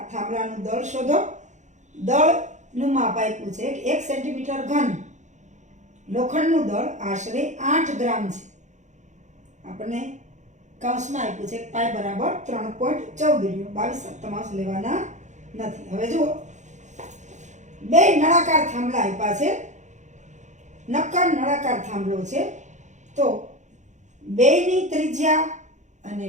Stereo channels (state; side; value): late; left; 0.35 ms